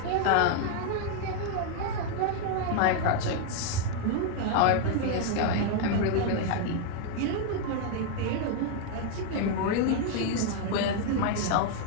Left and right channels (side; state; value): both; different; correlation 0.00